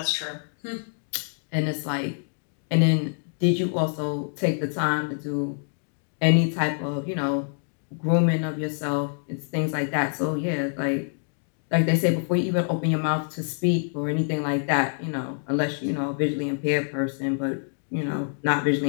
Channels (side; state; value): right; silent; digital silence